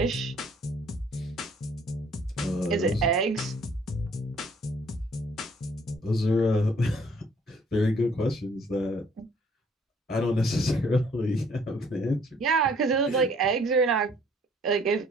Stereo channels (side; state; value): both; normal; correlation 0.60